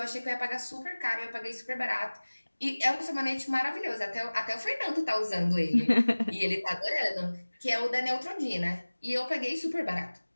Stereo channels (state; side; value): inverted; both; correlation -1.00